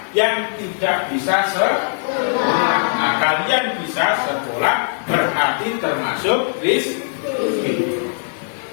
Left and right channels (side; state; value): right; silent; 63 dB below the other